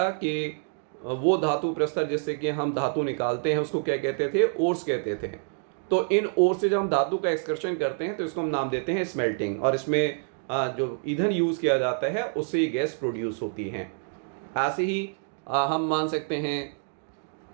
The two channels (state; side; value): silent; left; 60 dB below the other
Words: कि वो धातु प्रस्तर जिससे कि हम धातु निकालते हैं उसको क्या कहते थे? ओर्स कहते थे। तो इन ओर्स से जब हम धातु का एक्सकर्शन करते हैं तो इसको हम नाम देते हैं स्मेल्टिंग। और इसमें जो ईंधन यूज़ किया जाता है उससे ये गैस प्रोड्यूस होती है। ऐसे ही हम मान सकते हैं